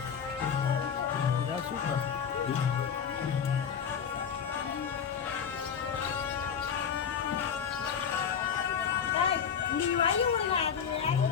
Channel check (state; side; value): quieter; right; 7.4 dB